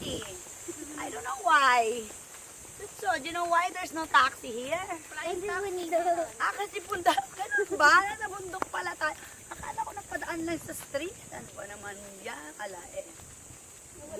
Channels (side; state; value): both; identical; correlation 1.00